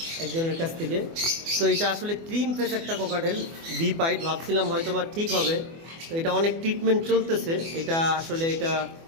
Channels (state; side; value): late; left; 24 ms